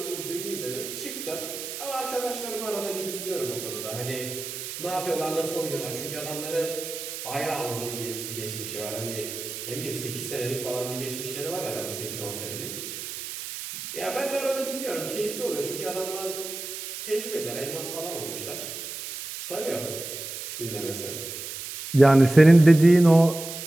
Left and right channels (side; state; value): right; noise; hiss, 8 dB below the sound